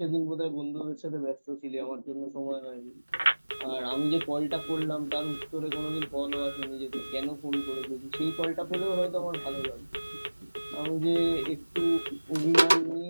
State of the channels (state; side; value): inverted; both; correlation -1.00